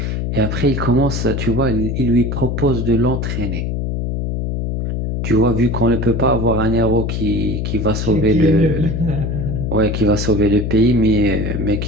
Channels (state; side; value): noise; left; hum, 2 dB below the sound